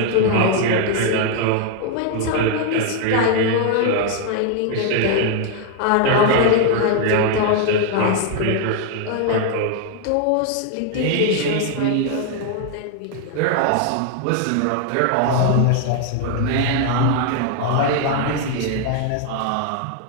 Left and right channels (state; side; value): different; both; correlation 0.00